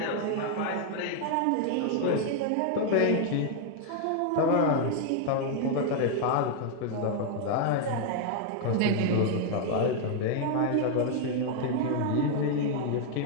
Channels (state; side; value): different; both; correlation 0.00